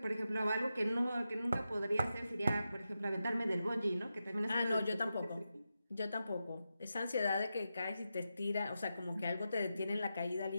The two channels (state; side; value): inverted; both; correlation -0.89